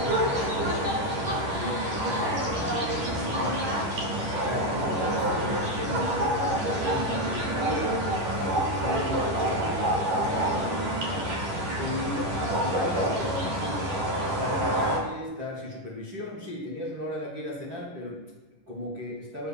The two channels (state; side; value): late; left; 10 ms